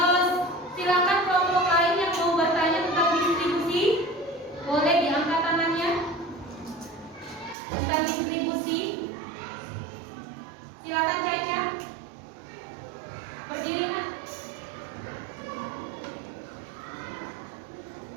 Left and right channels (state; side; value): drops out; left; at 7.6 s